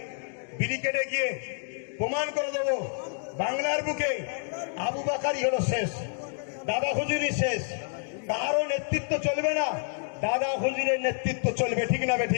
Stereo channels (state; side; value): silent; right; 59 dB below the other